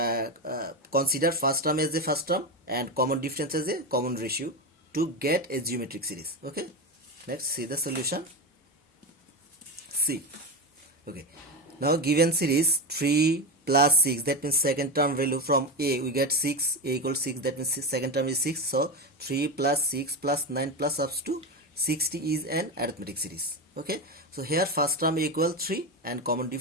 consider first term as a first term and common difference as a common ratio to get a geometric series. Okay, let's see the solution. See, okay, now given series 3 plus 6, that means second term value from a we get 6, a equals 6, that means second term is 6. So 3 plus 6 plus 9 plus up to 60 is an arithmetic series. Okay, so here first term equal 3 and common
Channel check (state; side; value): normal; both; correlation 0.17